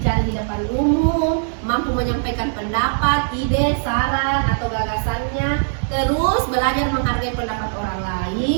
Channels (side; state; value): left; silent; digital silence